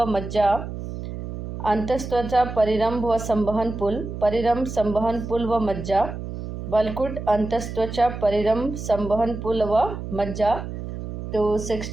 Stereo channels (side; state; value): right; noise; hum, 8 dB below the sound